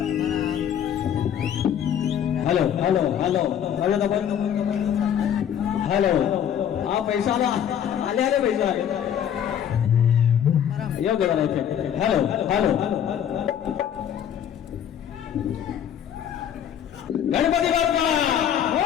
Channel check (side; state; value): right; quieter; 9.3 dB